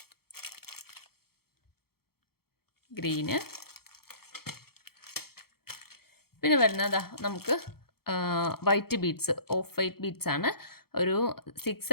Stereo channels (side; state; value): right; late; 0.95 ms